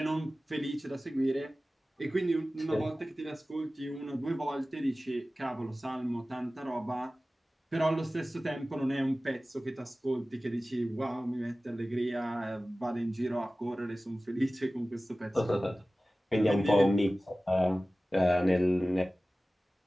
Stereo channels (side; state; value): both; normal; correlation 0.96